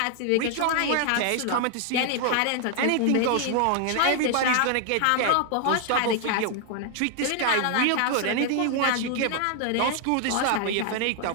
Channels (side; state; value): both; different; correlation 0.00